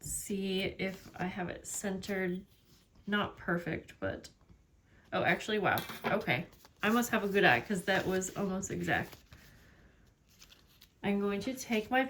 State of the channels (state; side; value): identical; both; correlation 1.00